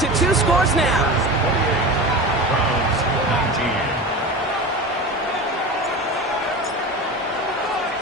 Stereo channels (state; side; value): normal; both; correlation 0.29